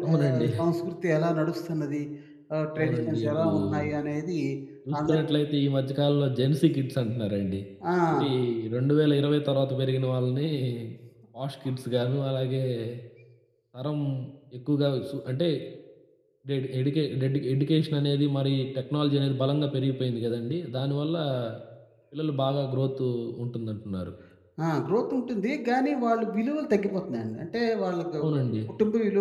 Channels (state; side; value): identical; both; correlation 1.00